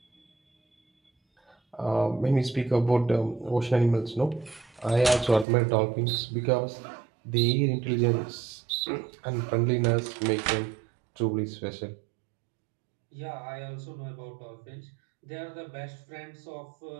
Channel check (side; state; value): left; drops out; at 5.5 s